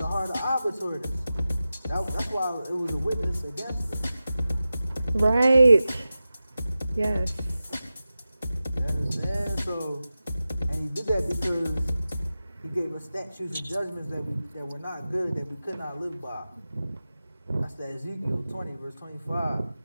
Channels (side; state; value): both; inverted; correlation -0.94